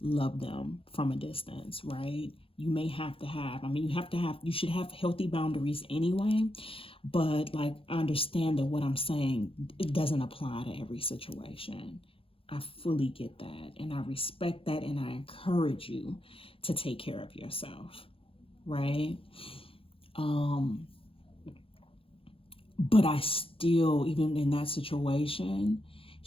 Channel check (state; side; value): late; right; 0.26 ms